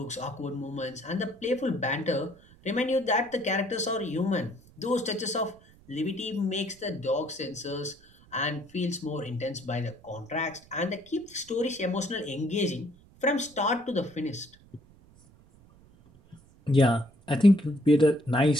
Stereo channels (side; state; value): right; noise; rumble, 26 dB below the sound